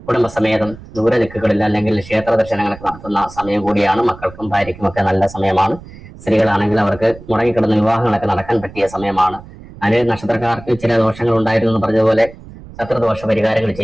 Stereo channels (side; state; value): right; noise; rumble, 18 dB below the sound